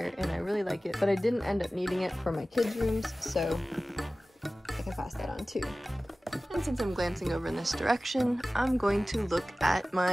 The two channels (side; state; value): both; normal; correlation 0.97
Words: and I really like it, but I didn't end up needing it for my kids' rooms, so I can pass that on too. And since I'm glancing over in this direction, I'm going to look at